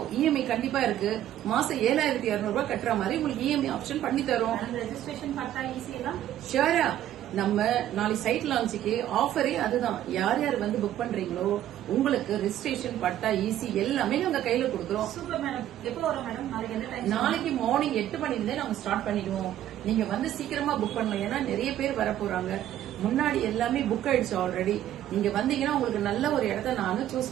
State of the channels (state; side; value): quieter; left; 12.1 dB